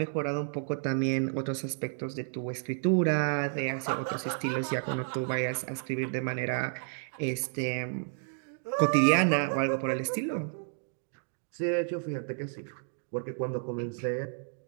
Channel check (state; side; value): silent; left; digital silence